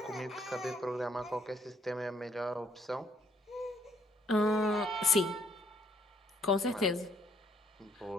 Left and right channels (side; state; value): both; normal; correlation 0.67